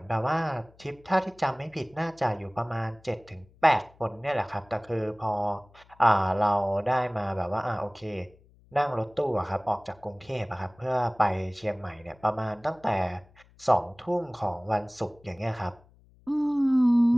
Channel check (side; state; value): left; noise; hum, 28 dB below the sound